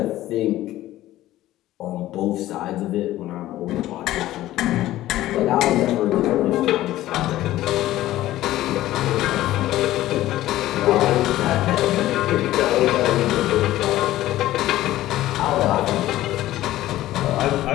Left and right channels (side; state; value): right; quieter; 15.0 dB